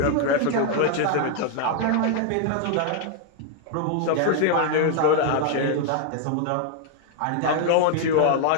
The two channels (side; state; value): both; different; correlation 0.00